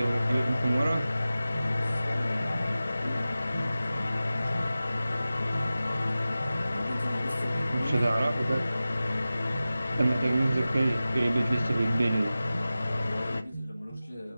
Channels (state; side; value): inverted; both; correlation -0.96